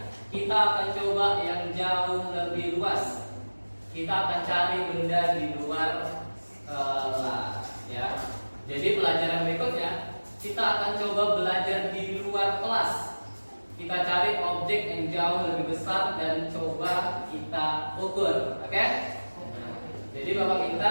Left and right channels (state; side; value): inverted; both; correlation -1.00